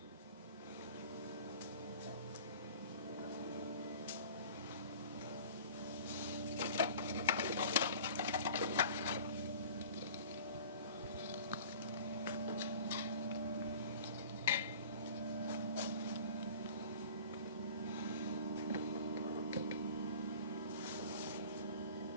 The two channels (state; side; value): inverted; both; correlation -0.44